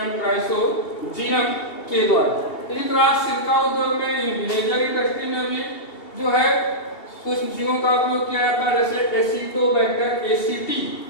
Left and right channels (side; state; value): right; late; 2.7 ms